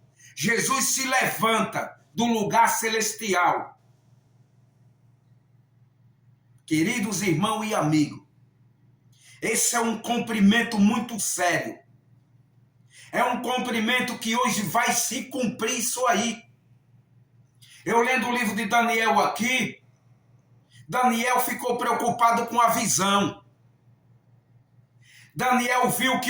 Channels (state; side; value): identical; both; correlation 1.00